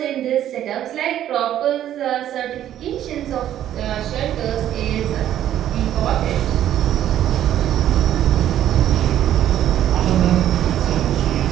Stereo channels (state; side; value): quieter; left; 11.5 dB